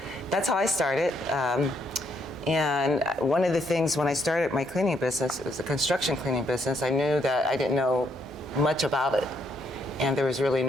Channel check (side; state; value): both; normal; correlation 0.73